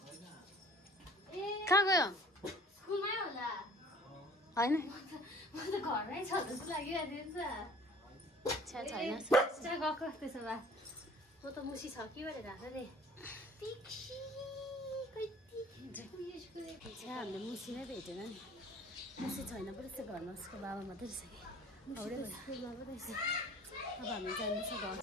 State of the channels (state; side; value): normal; both; correlation 0.50